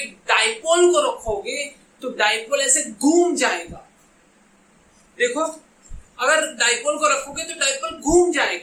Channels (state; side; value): identical; both; correlation 1.00